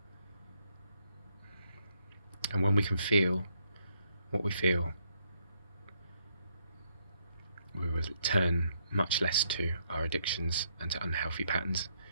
And when we can feel what we feel, we will turn much less to our addictions and to unhealthy patterns.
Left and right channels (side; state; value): both; inverted; correlation -0.74